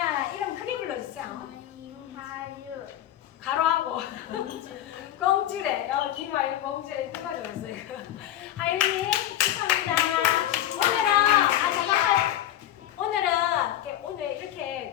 이름 크게 불러주세요. 김하윤 가로하고 공주래. 김하윤 공주래. 누가 좋았어요? 하윤이 축하합니다. 오늘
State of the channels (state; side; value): quieter; right; 12.4 dB